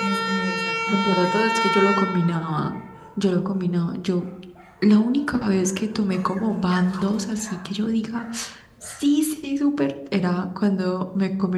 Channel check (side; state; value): both; identical; correlation 1.00